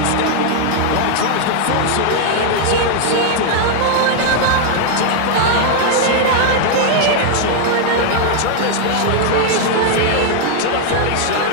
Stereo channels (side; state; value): both; different; correlation 0.00